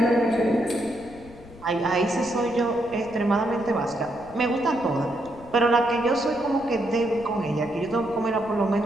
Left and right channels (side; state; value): left; noise; rumble, 21 dB below the sound